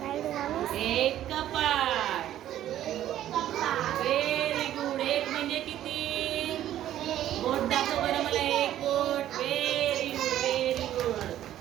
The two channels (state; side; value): quieter; left; 12.2 dB